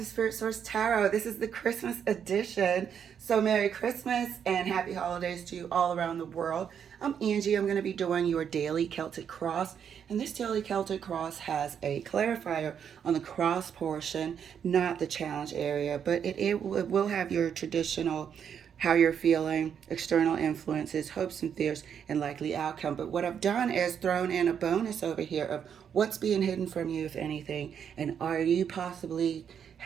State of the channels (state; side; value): quieter; left; 8.0 dB